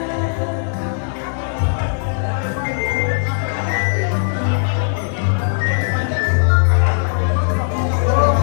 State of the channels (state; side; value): silent; right; 67 dB below the other